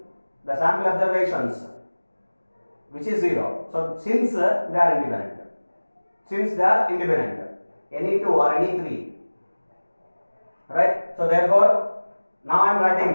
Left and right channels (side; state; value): both; inverted; correlation -1.00